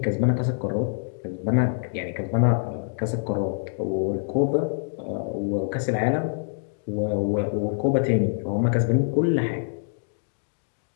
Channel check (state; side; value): silent; right; digital silence